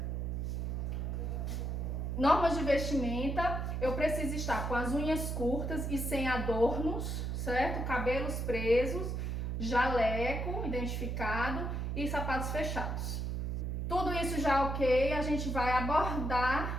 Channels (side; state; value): right; noise; hum, 2 dB below the sound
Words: Normas de vestimenta: eu preciso estar com as unhas curtas e sem adornos, certo? Cabelos presos, jaleco identificado e sapatos fechados. Tudo isso já ok, a gente vai